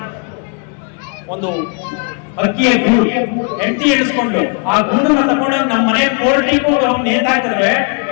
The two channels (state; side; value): quieter; right; 36.4 dB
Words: ಒಂದು ಅಕ್ಕಿಯ ಗೂಡು. ಹೆಂಡತಿ ಎಣಿಸ್ಕೊಂಡು ಆ ಗೂಡನ್ನ ತಗೊಂಡು ನಮ್ಮ ಮನೆ ಕೋರ್ಟಿಗೆ ಹೋಗಿ ನೇತಾಕಿದ್ರೆ